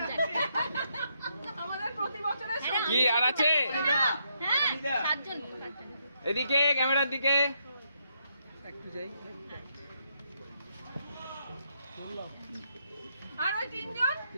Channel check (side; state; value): both; inverted; correlation -0.77